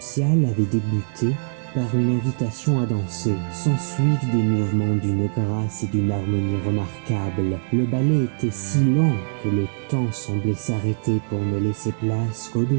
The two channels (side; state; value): left; silent; 60 dB below the other